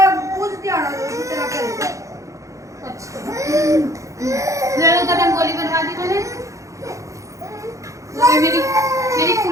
अच्छा कदम गोली बनवा दी मैंने। मेरी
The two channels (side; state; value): left; late; 0.15 ms